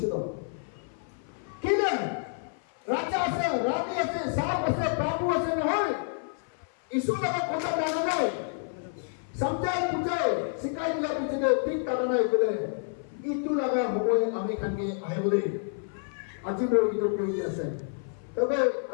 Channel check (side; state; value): right; silent; 56 dB below the other